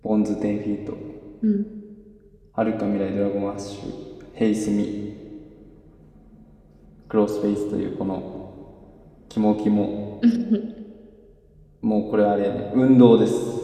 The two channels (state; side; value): identical; both; correlation 1.00